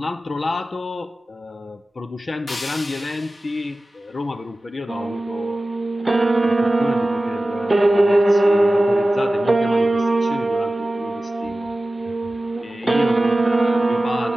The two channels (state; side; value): normal; both; correlation 0.96